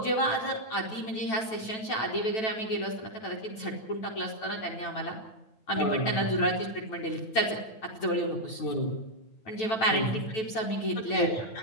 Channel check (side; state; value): right; late; 9.1 ms